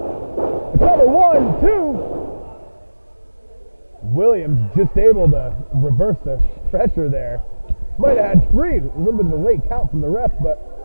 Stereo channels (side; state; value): both; inverted; correlation -1.00